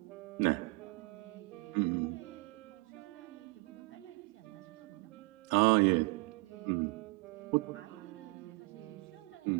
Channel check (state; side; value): quieter; left; 26.8 dB